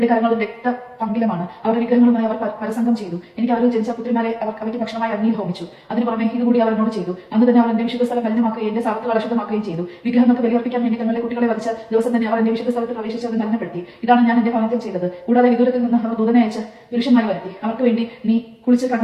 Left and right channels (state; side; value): identical; both; correlation 1.00